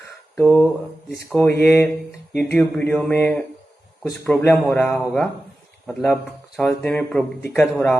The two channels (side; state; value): both; normal; correlation 0.94